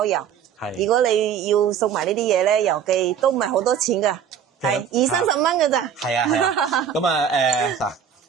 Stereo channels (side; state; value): left; quieter; 8.2 dB